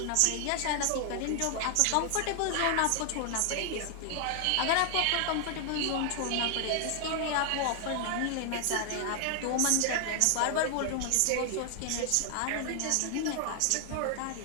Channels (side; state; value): both; different; correlation 0.00